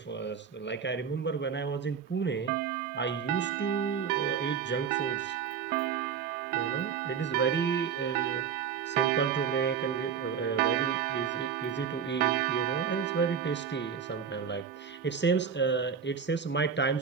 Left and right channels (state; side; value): quieter; left; 7.2 dB